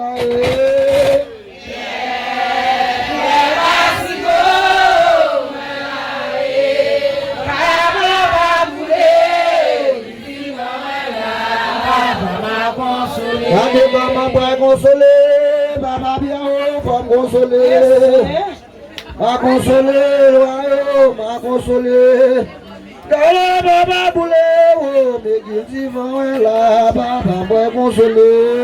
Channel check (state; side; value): identical; both; correlation 1.00